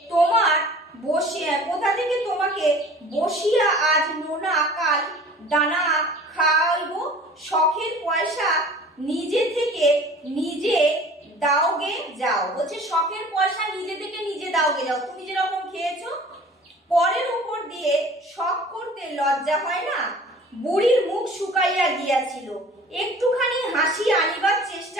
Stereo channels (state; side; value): normal; both; correlation 0.46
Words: তোমাকে বসিয়া আজ নোনা, কাল দানা খাইব? শখের পয়সা নিজে থেকে নিজে দাওগে যাও। বলছে শখের পয়সা নিজে থেকে নিজে দাওগে যাও, তুমি যেরকম খেয়েছো। পরের উপর দিয়ে শখ করতে লজ্জা হয় না? বুড়ির মুখ শুকাইয়া গিয়াছিল। একটুখানি হাসি আনিবার